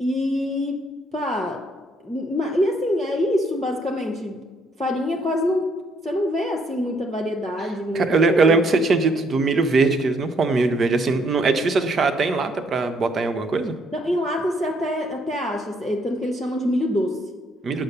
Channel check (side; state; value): both; normal; correlation 0.69